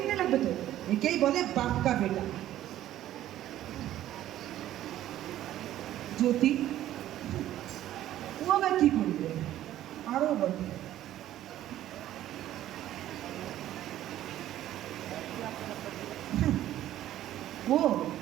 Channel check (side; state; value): left; quieter; 13.0 dB